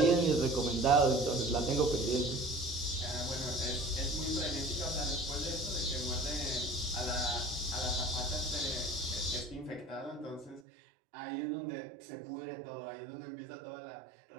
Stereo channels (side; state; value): left; drops out; at 10.6 s